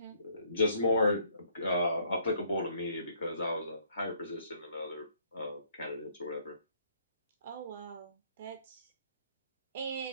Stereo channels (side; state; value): both; inverted; correlation -0.65